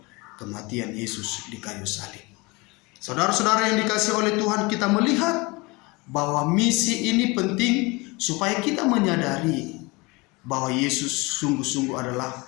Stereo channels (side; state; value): right; quieter; 25.2 dB